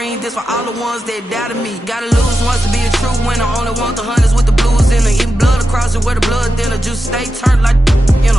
This for all the ones that doubted me. Gotta lose once to be a true winner. Only want the hunters with the blues in it. Eating blood across it where the blood dinner. Just stay turned like, you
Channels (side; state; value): both; normal; correlation 0.90